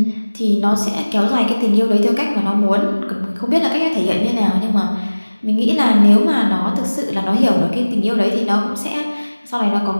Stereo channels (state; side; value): inverted; both; correlation -1.00